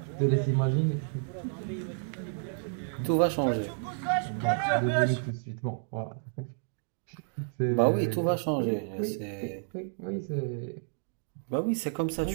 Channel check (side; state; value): left; silent; digital silence